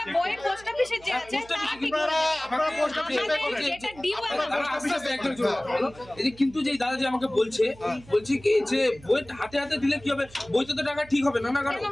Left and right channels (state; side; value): noise; right; hum, 22 dB below the sound